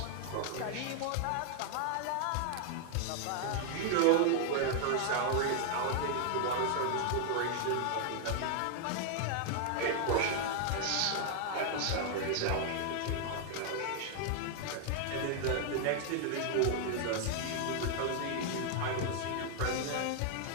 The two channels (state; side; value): different; both; correlation 0.00